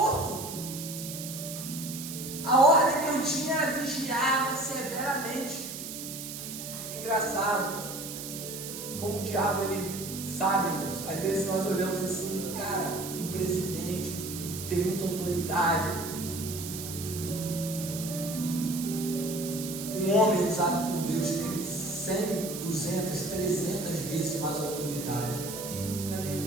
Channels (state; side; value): noise; right; hiss, 8 dB below the sound